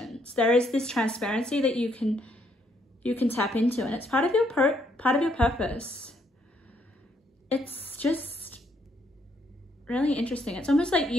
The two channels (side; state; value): both; normal; correlation 0.72